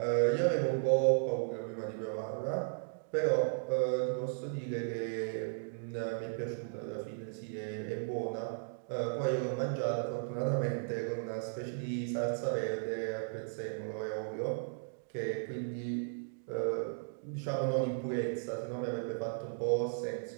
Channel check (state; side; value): silent; left; digital silence